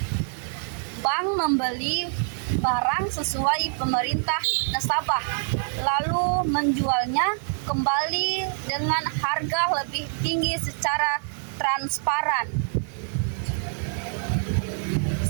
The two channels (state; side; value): silent; left; digital silence